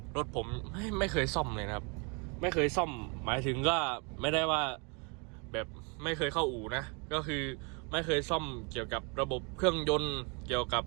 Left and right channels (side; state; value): left; quieter; 33.1 dB